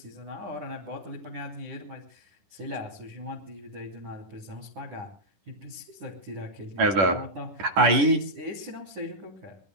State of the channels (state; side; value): late; left; 10 ms